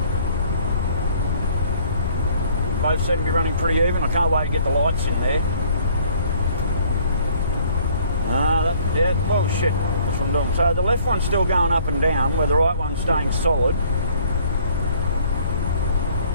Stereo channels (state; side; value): inverted; both; correlation -0.58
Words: Both seem to be running pretty even. I can't wait to get the lights in there. Yeah, well shit, that's what I'm doing. So the left one's still going up and down, where the right one's staying solid.